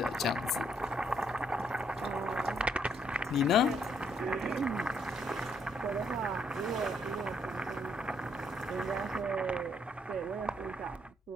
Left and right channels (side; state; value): both; normal; correlation 0.71